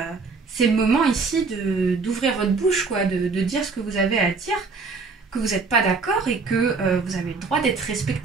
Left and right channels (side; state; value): left; quieter; 4.5 dB